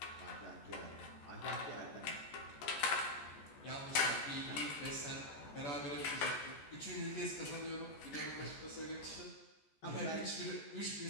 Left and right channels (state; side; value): late; right; 14 ms